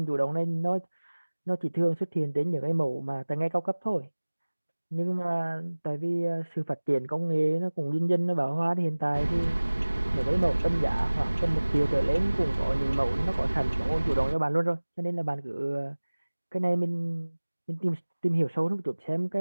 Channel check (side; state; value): both; inverted; correlation -1.00